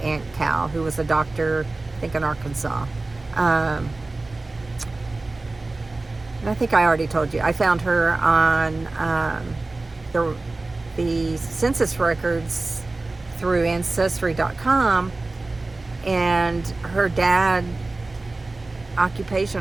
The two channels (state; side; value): quieter; left; 3.2 dB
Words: Cal, who was a doctor, I think in Arkansas. And I think I already told you I found her on the census records through Ancestry.com. And her dad